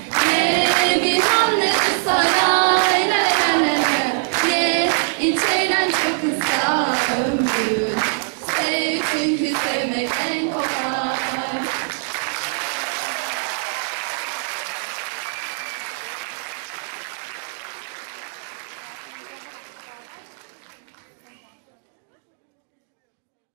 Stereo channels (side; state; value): left; silent; digital silence